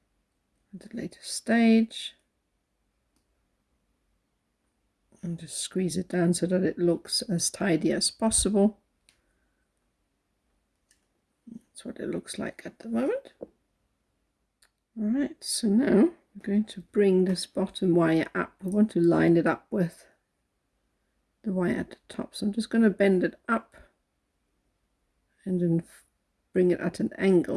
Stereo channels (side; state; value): both; identical; correlation 1.00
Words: at a later stage and just squeeze it down so that it looks as tidy as possible. That's what it looks like at the moment. All right, so now I'm going to bring this bottom wire up. I want to line it up with the wire at the top, so I'm just going to bend it up and then bring it at an